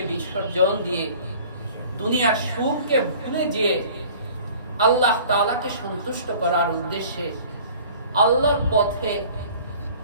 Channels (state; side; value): inverted; both; correlation -0.48